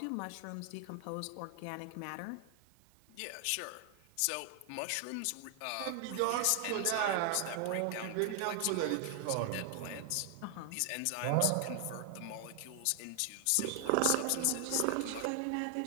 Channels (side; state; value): both; different; correlation 0.00